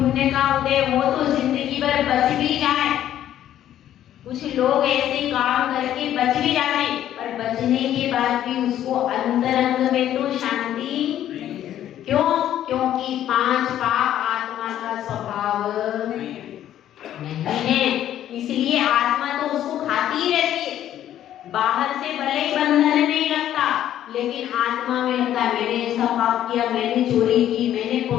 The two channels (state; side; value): quieter; right; 11.6 dB